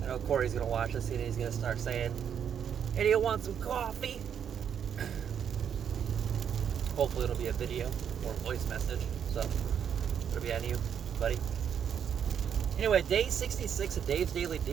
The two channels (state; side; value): quieter; left; 8.3 dB